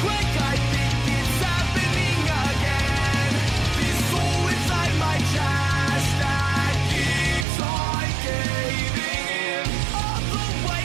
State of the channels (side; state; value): left; drops out; at 7.5 s